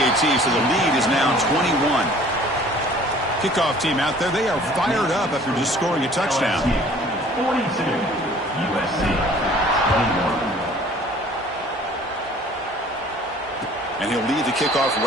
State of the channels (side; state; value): both; normal; correlation 0.51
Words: so the lead is now 21. Kickoff team out there, they are fired up after just scoring a touchdown. 42, USC 21. And he'll lead the kickoff